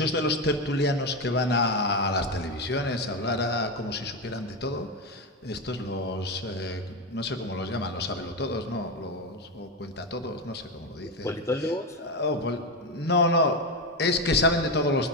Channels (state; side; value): normal; both; correlation 0.13